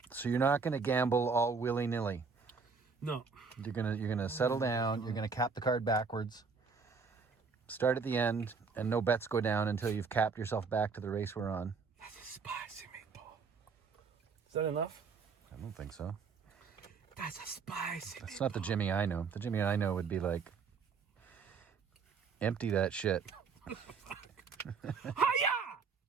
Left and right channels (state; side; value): quieter; left; 5.2 dB